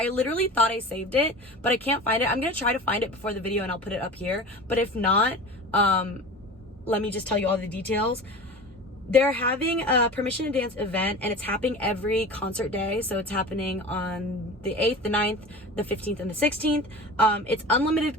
literally thought I saved it, but I can't find it. I'm gonna try to find it before the video and I'll put it up here. But if not, let me just tell you all the details. They're having a permission to dance event, and it's happening every concert day. So it's happening on the 8th, the 9th, the 15th, and the 16th. It's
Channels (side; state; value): both; normal; correlation 0.34